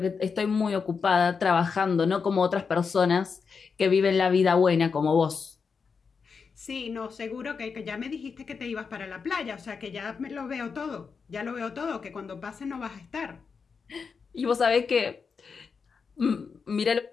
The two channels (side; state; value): right; quieter; 5.5 dB